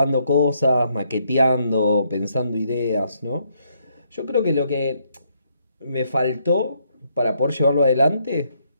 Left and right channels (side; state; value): both; inverted; correlation -0.74